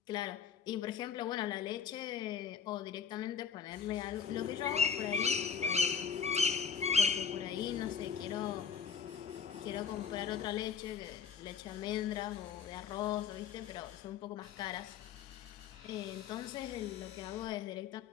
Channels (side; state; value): right; quieter; 7.0 dB